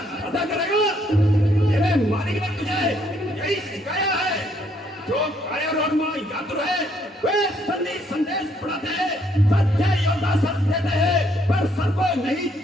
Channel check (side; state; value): both; normal; correlation 0.69